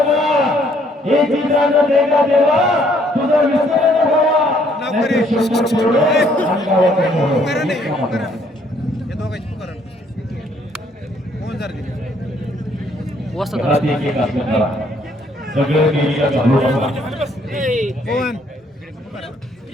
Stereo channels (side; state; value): both; normal; correlation 0.65